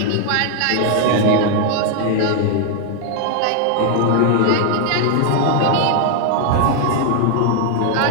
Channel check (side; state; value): both; different; correlation 0.00